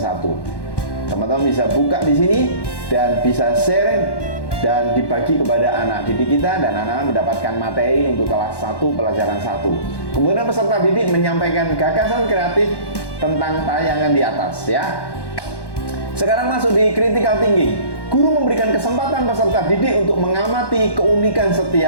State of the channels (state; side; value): late; right; 1.1 ms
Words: Teman-teman bisa buka di sini dan bisa sharing dan dibagi kepada anak didik kita, dan anak-anak mendapatkan materi untuk kelas 1 pelajaran 1. Kemudian peserta didik menyampaikan gagasan kreatif tentang tayangan di atas ya. Sekarang masuk di critical thinking. Guru memberikan kesempatan peserta didik untuk mengamati keunikan